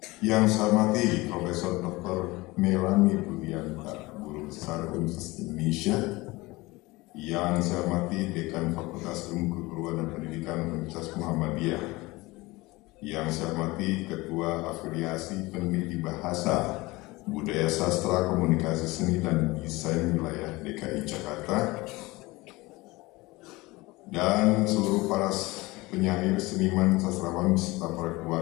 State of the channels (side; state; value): right; quieter; 21.7 dB